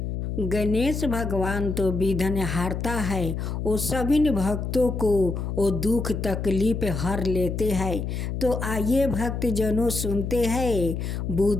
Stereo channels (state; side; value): noise; left; hum, 3 dB below the sound